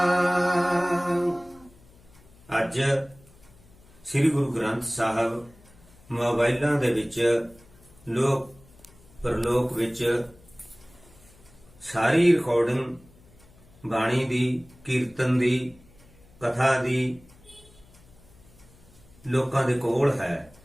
ਅੱਜ ਸ੍ਰੀ ਗੁਰੂ ਗ੍ਰੰਥ ਸਾਹਿਬ ਮੋਬਾਈਲਾਂ ਦੇ ਵਿੱਚ ਲੋਕ ਪਰਲੋਕ ਵਿੱਚ ਸਾਰੀ ਰਿਕਾਰਡਿੰਗ ਬਾਣੀ ਦੀ, ਕੀਰਤਨ ਦੀ, ਕਥਾ ਦੀ ਲੋਕਾਂ ਦੇ ਕੋਲ ਹੈ।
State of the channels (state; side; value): noise; left; hum, 26 dB below the sound